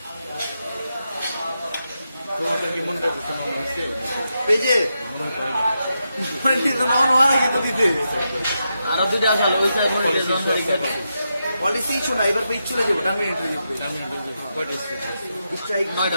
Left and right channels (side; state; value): both; inverted; correlation -0.86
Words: তোমাদের কি মনে হচ্ছে পেজে আরো দুটো আসালো পলিসি শোনা এবার পেজ চলে যাবো